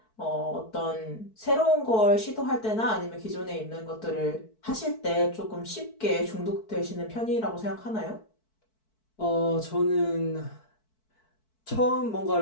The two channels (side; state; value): right; late; 4.6 ms